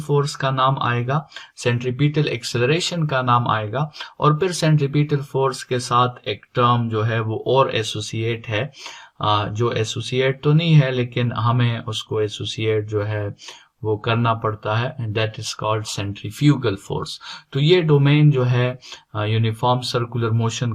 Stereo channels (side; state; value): both; identical; correlation 1.00